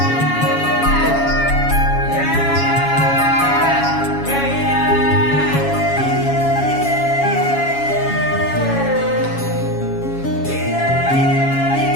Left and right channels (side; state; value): right; late; 7.2 ms